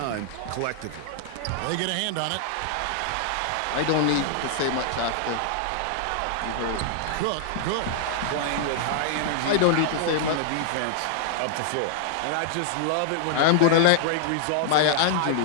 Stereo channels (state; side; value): different; both; correlation -0.01